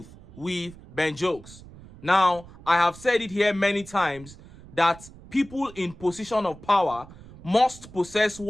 with Ben Jokes. Now, I have said it here many times that people in position of power must possess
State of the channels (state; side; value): noise; right; rumble, 19 dB below the sound